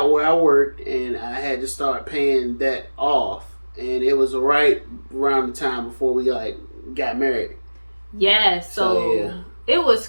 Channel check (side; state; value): both; inverted; correlation -1.00